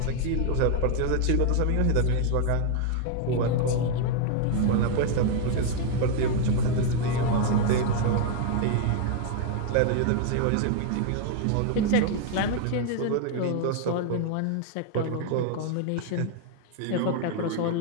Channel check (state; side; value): different; both; correlation 0.00